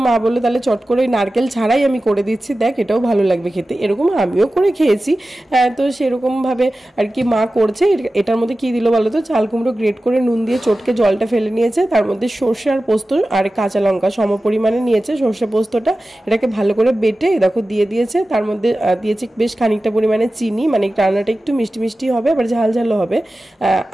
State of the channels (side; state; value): both; normal; correlation 0.95